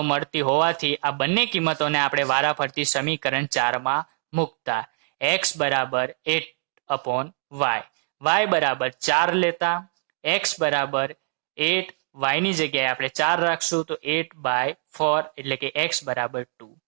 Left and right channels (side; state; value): left; silent; digital silence